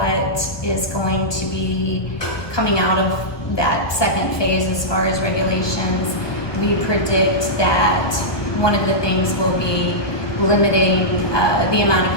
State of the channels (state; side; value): late; right; 1.2 ms